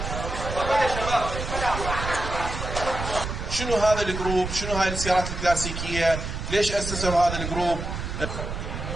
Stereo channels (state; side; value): noise; right; rumble, 5 dB below the sound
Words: شنو هذا الجروب؟ شنو هاي السيارات الكلاسيكية؟ ليش أسسوا هذا الجروب؟